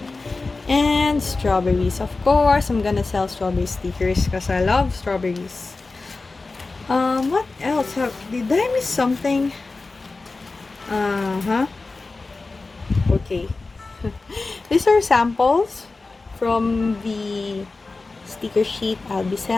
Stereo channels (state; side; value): quieter; right; 3.7 dB